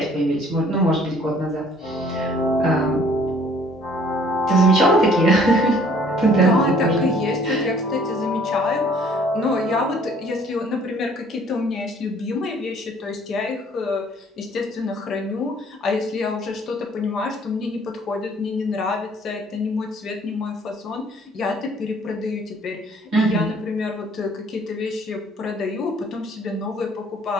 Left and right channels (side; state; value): both; normal; correlation 0.57